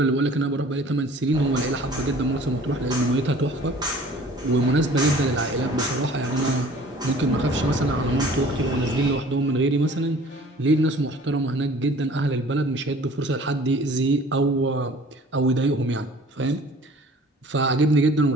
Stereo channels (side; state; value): both; normal; correlation 0.49